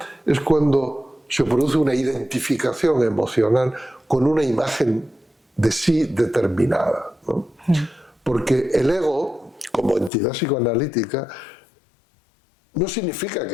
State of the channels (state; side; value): drops out; right; at 10.1 s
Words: es cuando se produce una identificación emocional con una imagen de sí determinada, ¿no? Porque el ego, como entidad psicoanalítica, no significa